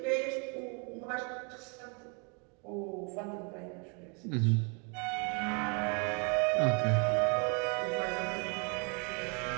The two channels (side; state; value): left; quieter; 34.9 dB